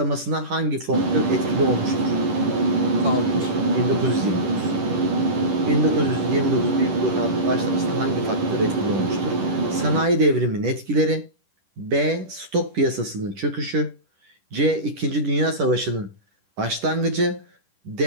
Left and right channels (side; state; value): left; late; 10 ms